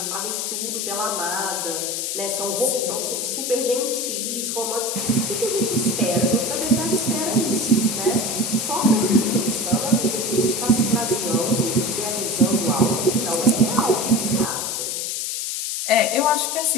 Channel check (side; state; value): left; noise; hiss, 2 dB below the sound